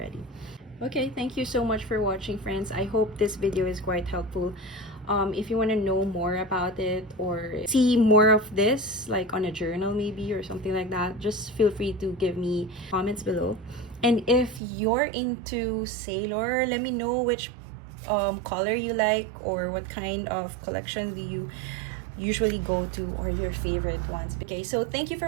Okay, thank you so much for watching, friends. I hope this video is quite helpful. If you want to know more about it or see more of this, like on a journal maybe or something like that, just feel free to give me comments below. And if you're into Sailor, let me know which color you like or what kind of collection do you usually go to or your favorite ones. Okay, so thank you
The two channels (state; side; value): drops out; left; at 14.6 s